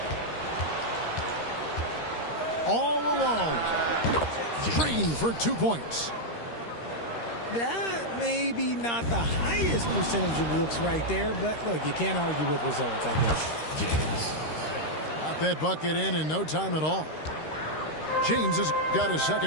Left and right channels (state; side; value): late; right; 13 ms